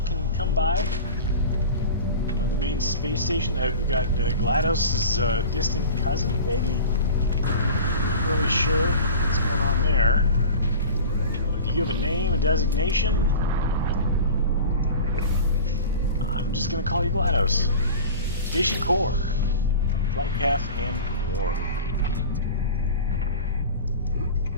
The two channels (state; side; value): inverted; both; correlation -0.35